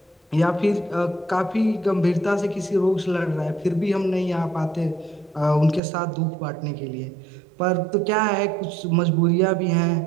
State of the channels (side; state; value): left; drops out; at 5.8 s